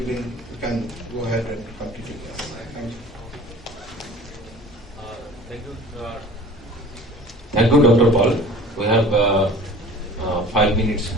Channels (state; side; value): normal; both; correlation 0.44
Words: you can go ahead and continue this. Thank you. Thank you. Thank you, Dr. Paul. We have 5 minutes